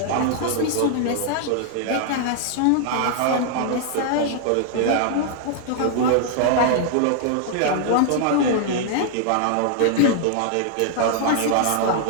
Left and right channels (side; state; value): both; different; correlation 0.00